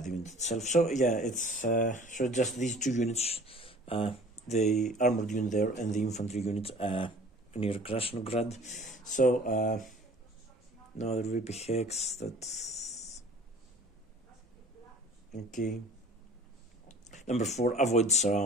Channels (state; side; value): normal; both; correlation 0.48